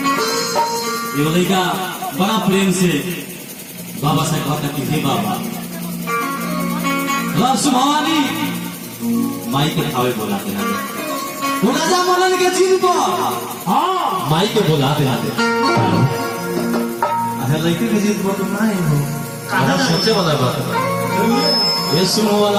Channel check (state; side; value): identical; both; correlation 1.00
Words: ये लड़का बड़ा प्रेम से बाबा से कहता कि हे बाबा रब सुभानी माई के खावे बोलाते हैं वो राजा मनन के चिन्ह पर हाँ माई के बोलाते हैं। अच्छा लड़के के चिन्ह पर तो नहीं हो सोचे वाला बात ये सुनो